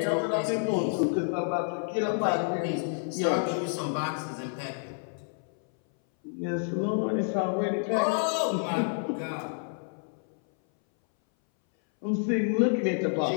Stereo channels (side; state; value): right; silent; 59 dB below the other